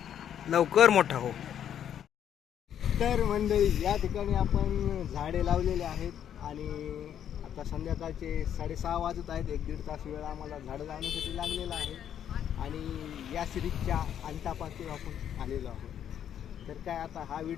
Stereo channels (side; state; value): right; quieter; 9.6 dB